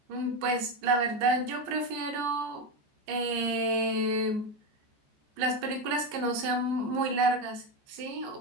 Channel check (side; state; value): left; late; 15 ms